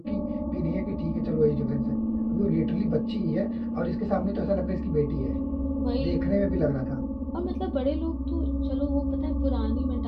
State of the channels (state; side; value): identical; both; correlation 1.00